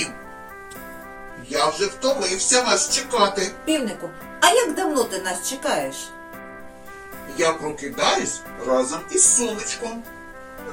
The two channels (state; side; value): identical; both; correlation 1.00